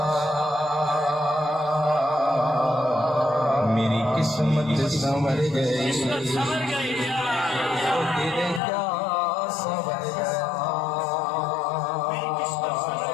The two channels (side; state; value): right; drops out; at 8.6 s